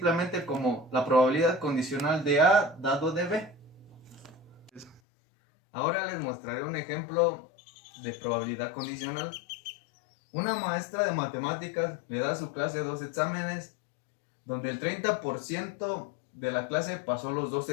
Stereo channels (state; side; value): drops out; right; at 5.0 s